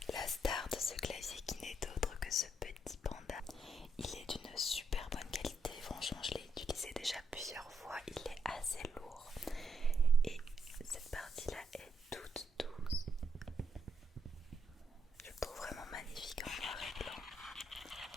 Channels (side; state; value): both; normal; correlation 0.77